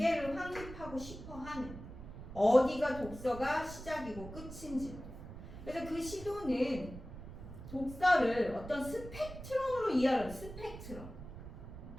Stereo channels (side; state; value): right; noise; rumble, 12 dB below the sound